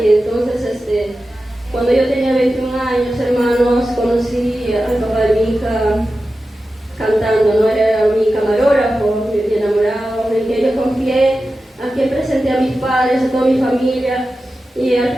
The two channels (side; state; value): both; normal; correlation 0.93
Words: entonces cuando yo tenía 21 años, hermanos, conocí al papá de mi hija cantando, no era mi camarógrafo, mi enamorado, en que yo confié, a quien presenté a mis padres, a toda mi familia. Y al